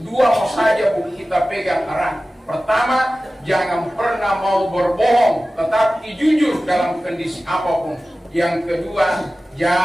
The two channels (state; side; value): normal; both; correlation 0.96